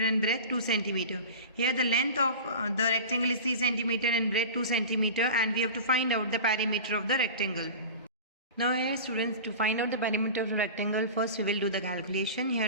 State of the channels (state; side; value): inverted; both; correlation -0.33